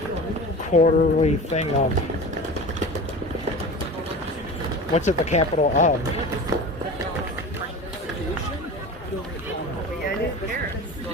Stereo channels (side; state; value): both; normal; correlation 0.34